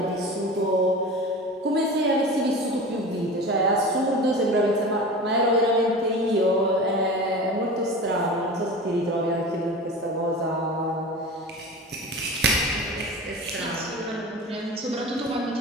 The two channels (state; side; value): normal; both; correlation 0.33